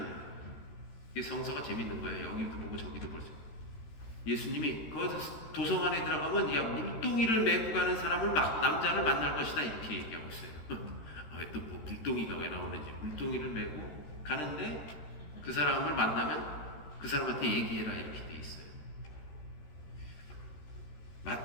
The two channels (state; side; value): late; right; 13 ms